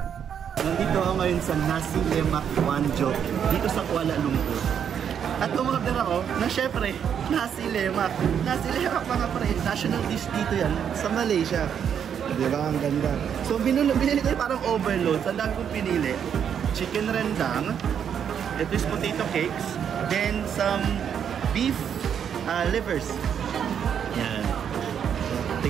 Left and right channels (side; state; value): left; quieter; 8.2 dB